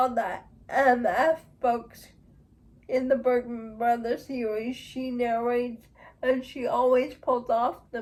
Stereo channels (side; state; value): both; identical; correlation 1.00